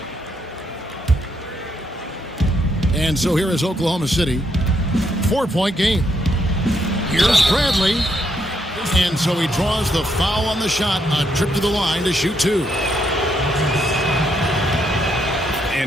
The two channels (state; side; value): normal; both; correlation 0.76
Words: And so here is Oklahoma City. 4-point game. Here's Bradley. And so he draws the foul on the shot. A trip to the line to shoot two.